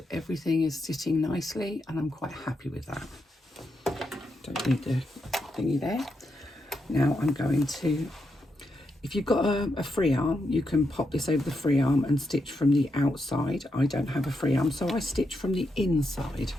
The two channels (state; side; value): normal; both; correlation 0.83